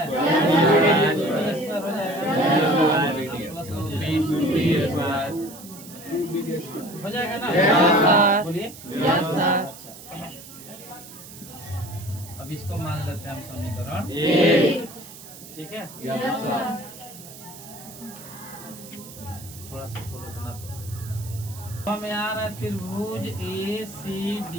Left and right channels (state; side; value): noise; right; hiss, 16 dB below the sound